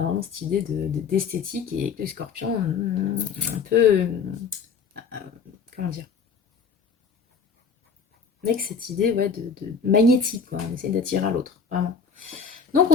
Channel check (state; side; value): quieter; right; 5.7 dB